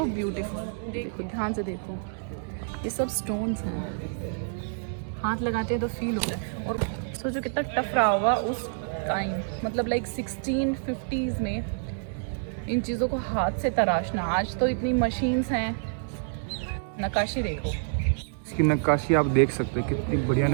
beautiful. देखो ध्यान से देखो, ये सब स्टोन्स हैं, हाथ लगाते हैं तो फील होता है। और सोचो कितना टफ रहा होगा उस टाइम, मतलब लाइक 1650s में इन चीज़ों को हाथ से तराशना। आज तो इतनी मशीन्स हैं। नक्काशी देखो, इसकी नक्काशी आप देख सकते हैं, कितनी बढ़िया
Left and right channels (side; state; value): left; silent; digital silence